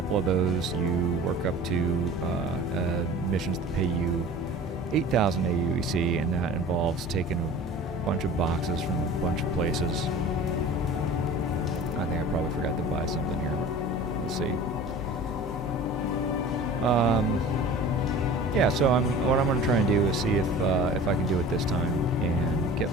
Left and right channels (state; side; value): normal; both; correlation 0.41